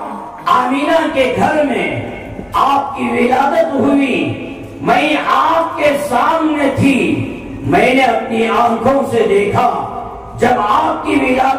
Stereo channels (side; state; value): both; identical; correlation 1.00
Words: آمینہ کے گھر میں آپ کی ولادت ہوئی، میں آپ کے سامنے تھی، میں نے اپنی آنکھوں سے دیکھا جب آپ کی